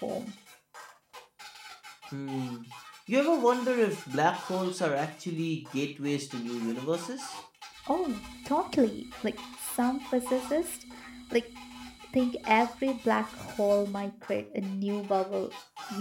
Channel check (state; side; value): identical; both; correlation 1.00